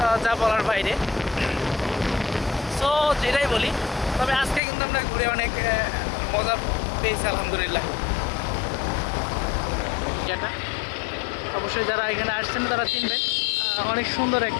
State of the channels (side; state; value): right; drops out; at 4.6 s